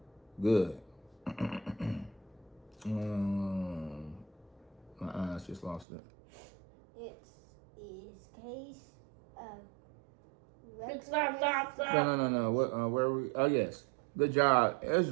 Good. My eyes just lost it. It is case of Stop. No. What? Where are we? Oh yes. Good job,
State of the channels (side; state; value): left; drops out; at 5.9 s